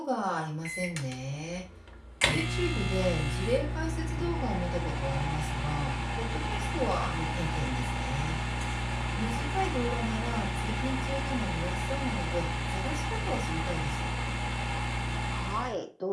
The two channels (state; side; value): identical; both; correlation 1.00